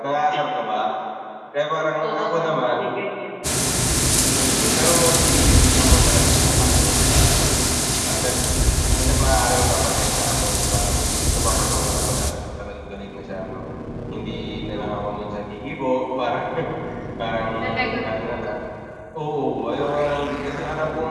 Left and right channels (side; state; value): both; identical; correlation 1.00